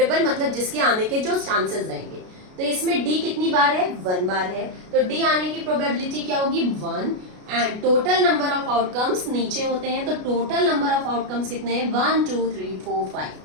मतलब जिसके आने के जो चांसेस रहेंगे, तो इसमें डी कितनी बार है, 1 बार है, तो डी आने की प्रोबेबिलिटी क्या होगी, 1। And total number of outcomes नीचे होते हैं, तो टोटल नंबर ऑफ आउटकम्स कितने हैं, 1 2 3 4 5।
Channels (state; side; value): late; left; 33 ms